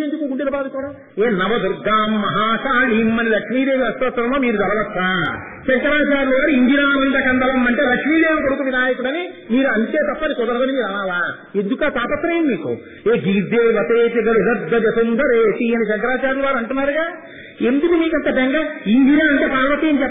గుండెలు బాదుకోవడం? ఏ నవదుర్గాం మహాకాళీం అని లక్ష్మీదేవి అష్టోత్తరంలో మీరు చదవచ్చా? శంకరాచార్యులు గారు ఇందిరానంద కందలం అంటే లక్ష్మీదేవి కొడుకు వినాయకుడని మీరు అంతే తప్పని కుదరదని మీరు అనాలా? ఎందుకు ఆ తాపత్రయం మీకు? ఏ గీర్దేవతేతి గరుగద్గజ సుందరేతి అని శంకరాచార్యులు వారు అంటున్నారుగా. ఎందుకు మీకంత బెంగ? ఇందిరా అంటే పార్వతి అని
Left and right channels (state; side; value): identical; both; correlation 1.00